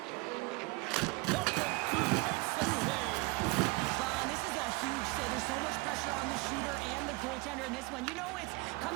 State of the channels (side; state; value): left; quieter; 25.0 dB